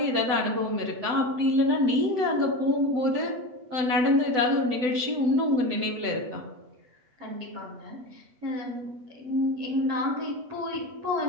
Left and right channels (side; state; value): left; late; 8.1 ms